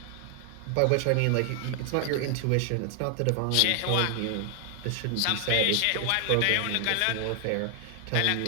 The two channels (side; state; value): both; different; correlation 0.00